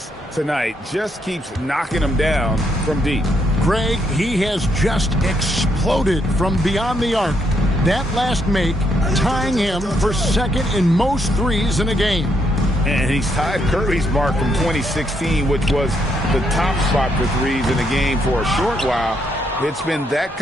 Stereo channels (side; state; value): both; normal; correlation 0.75